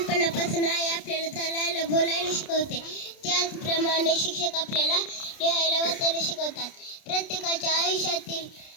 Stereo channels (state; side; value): late; right; 30 ms